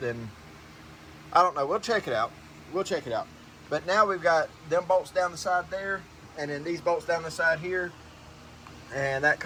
I don't know. We'll check it out. We'll check it out. But now we've got them bolts down the side there, and then these bolts down the side here, and that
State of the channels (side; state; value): both; identical; correlation 1.00